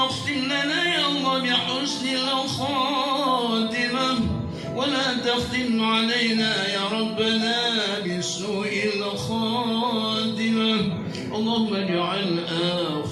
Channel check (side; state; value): both; identical; correlation 1.00